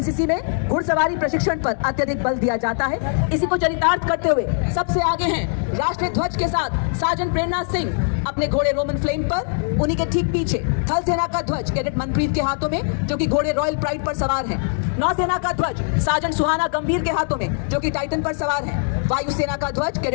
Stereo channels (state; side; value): silent; right; digital silence